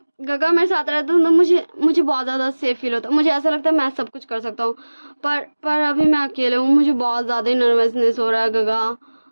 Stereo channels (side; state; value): both; inverted; correlation -1.00